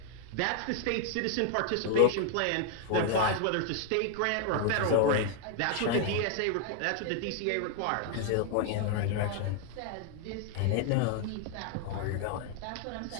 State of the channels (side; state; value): both; different; correlation 0.00